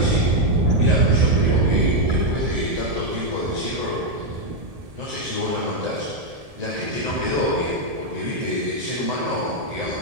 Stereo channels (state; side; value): late; left; 1.7 ms